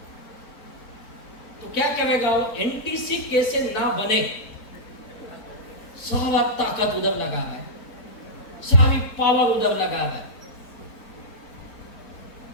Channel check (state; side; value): late; right; 4.5 ms